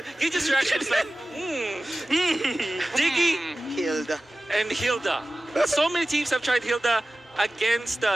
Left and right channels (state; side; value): normal; both; correlation 0.96